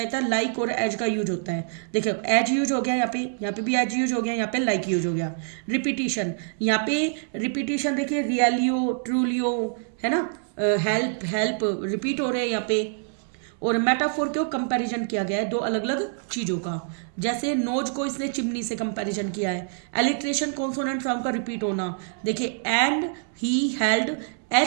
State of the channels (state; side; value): silent; left; 61 dB below the other